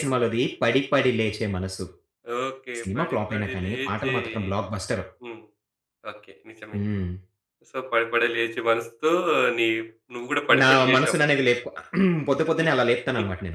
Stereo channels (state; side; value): identical; both; correlation 1.00